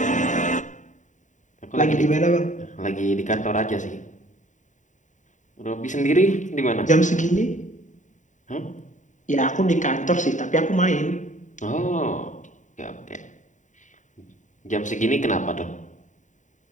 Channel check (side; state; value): right; late; 0.36 ms